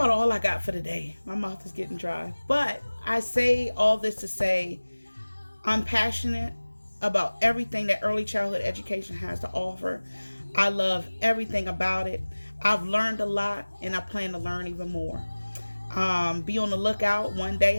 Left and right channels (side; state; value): both; inverted; correlation -1.00